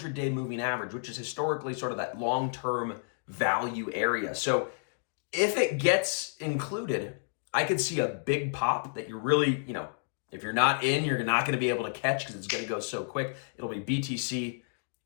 moving average, which is historically sort of that long-term value area. So if it gets included, I could see a big pop that you're really, if you're not in, you're not going to be able to catch because it's going to go so quick. It'll be BTC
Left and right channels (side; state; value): right; silent; digital silence